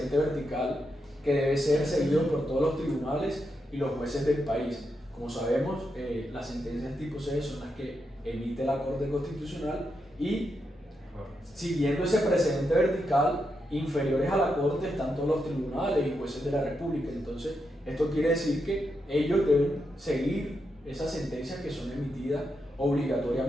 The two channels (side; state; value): both; normal; correlation 0.84